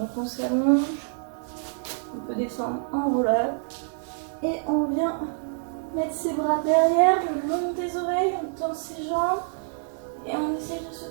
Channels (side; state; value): left; silent; digital silence